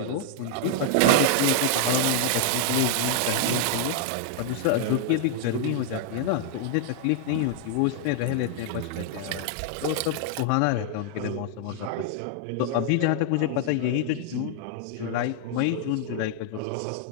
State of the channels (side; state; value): both; different; correlation 0.00